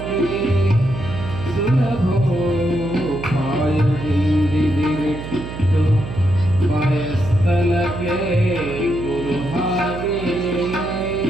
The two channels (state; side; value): noise; right; hum, 9 dB below the sound